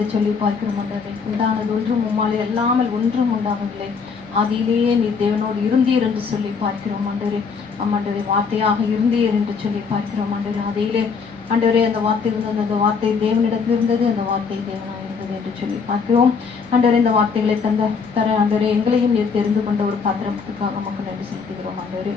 சொல்லி பார்க்கிறோம். ஆண்டவரே, உண்டானது ஒன்றும் உம்மாலே அல்லாமல் ஒன்றும் உண்டாகவில்லை. ஆதியிலேயே நீர் தேவனோடு இருந்தீர் என்று சொல்லி பார்க்கிறோம். ஆண்டவரே, ஆண்டவரே வார்த்தையாக இருந்தீர் என்று சொல்லி பார்க்கிறோம். ஆண்டவரே, ஆதியிலே ஆண்டவரே அந்த வார்த்தை இருந்தது, அந்த வார்த்தை தேவனிடத்தில் இருந்தது, அந்த வார்த்தை தேவனாக இருந்தது என்று சொல்லி பார்க்கிறோம். ஆண்டவரே, இந்த வார்த்தைகளை தர ஆண்டவரே எங்களையும் நீர் தெரிந்து கொண்ட ஒரு பாத்திரத்துக்காக மக்கள் நன்றி செலுத்துகிறோம். ஆண்டவரே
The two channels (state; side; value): quieter; right; 5.5 dB